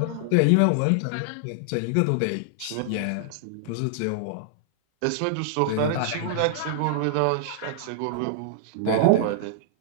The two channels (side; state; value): both; different; correlation -0.01